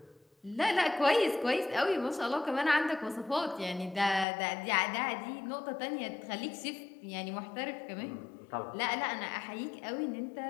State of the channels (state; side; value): drops out; right; at 4.2 s